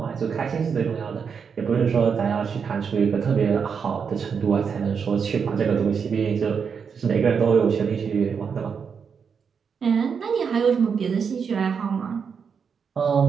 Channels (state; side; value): quieter; left; 6.4 dB